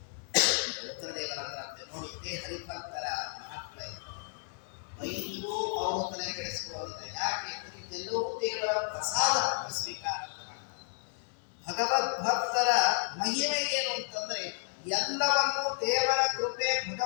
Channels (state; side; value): silent; right; 56 dB below the other